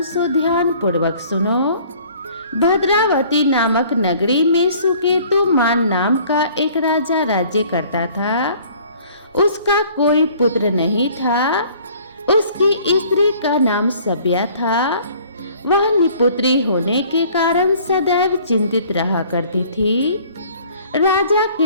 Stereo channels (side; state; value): both; inverted; correlation -0.54